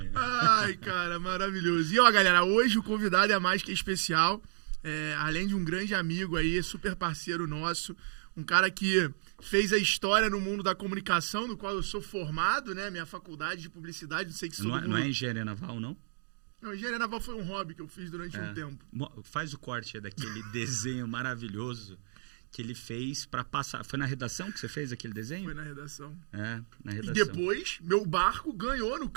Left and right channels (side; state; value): left; silent; digital silence